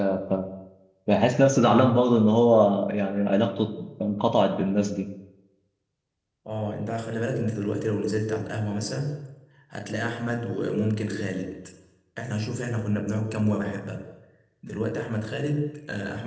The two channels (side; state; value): both; identical; correlation 1.00